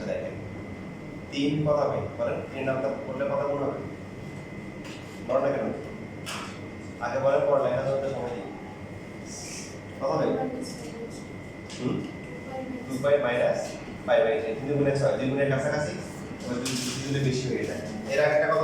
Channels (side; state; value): both; identical; correlation 1.00